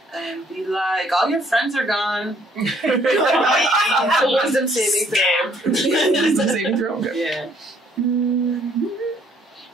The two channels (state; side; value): normal; both; correlation 0.64